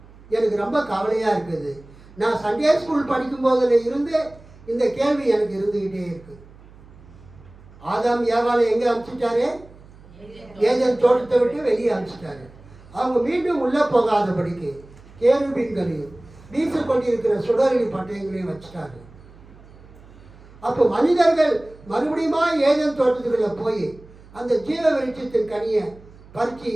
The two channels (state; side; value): noise; right; hum, 22 dB below the sound